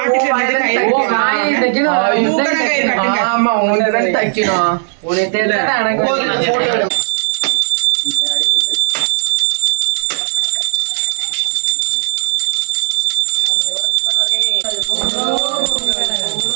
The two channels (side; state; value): left; silent; digital silence